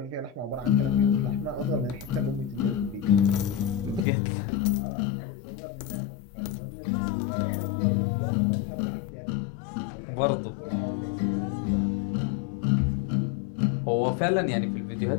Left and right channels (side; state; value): right; drops out; at 4.0 s